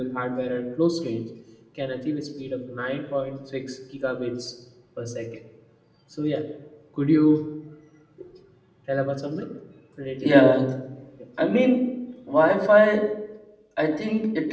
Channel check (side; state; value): both; identical; correlation 1.00